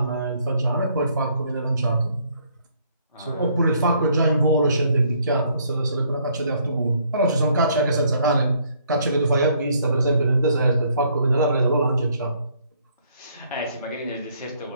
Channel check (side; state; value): both; inverted; correlation -0.66